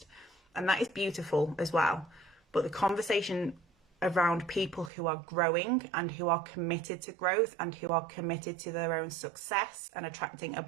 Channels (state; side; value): drops out; left; at 4.9 s